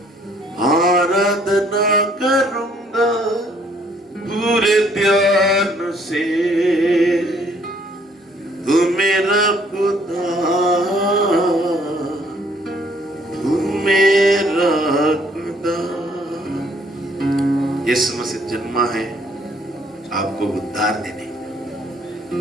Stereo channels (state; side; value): normal; both; correlation 0.63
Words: आराधना करूँगा पूरे ध्यान से। तू मेरा खुदा, तू मेरा खुदा। यीशु मसीह जन्मा है आपको उद्धार देने।